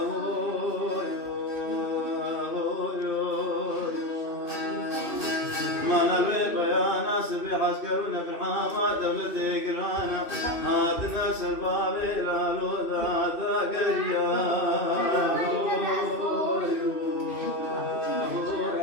ما نبي بيانا سبي عسكرنا في الحامة دولتي قرانا هاتنا سربابي لا لوذا ذاقريا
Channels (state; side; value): late; right; 2.6 ms